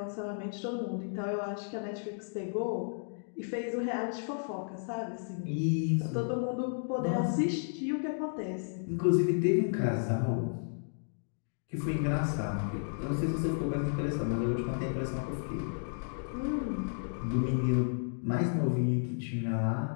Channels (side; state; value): right; silent; digital silence